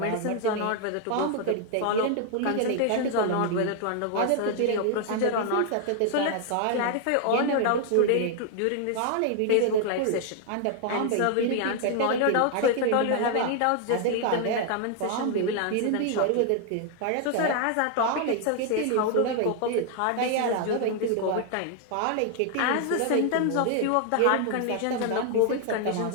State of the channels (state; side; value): different; both; correlation 0.00